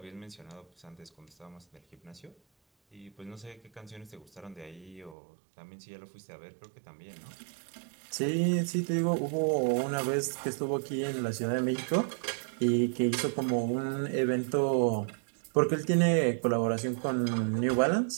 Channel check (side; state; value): left; drops out; at 5.2 s